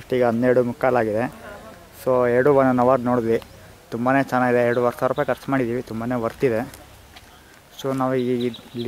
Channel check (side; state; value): both; identical; correlation 1.00